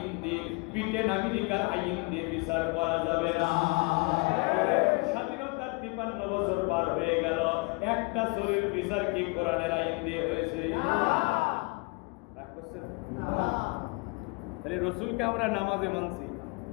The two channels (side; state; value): right; quieter; 28.7 dB